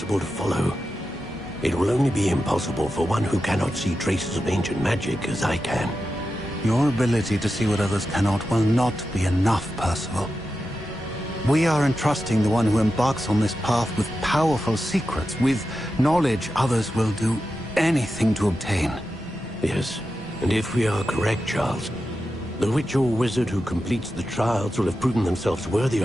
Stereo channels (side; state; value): both; normal; correlation 0.90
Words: to follow. It will only be impossible for one who cannot see traces of ancient magic as I can. Your ability to see what others cannot will not be enough, Percival. We are entrusting the one who embarks on this path with powerful secrets, with knowledge others will do anything to obtain. Yes, and if we are correct, Charles, the witch or wizard who completes the trials will have proven themselves worthy